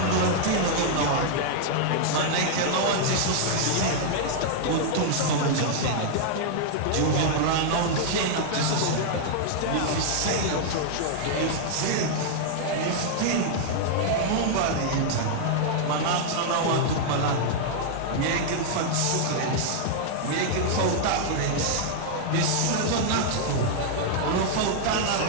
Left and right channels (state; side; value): different; both; correlation -0.01